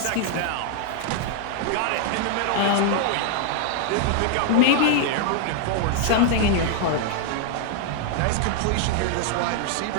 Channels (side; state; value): both; different; correlation 0.00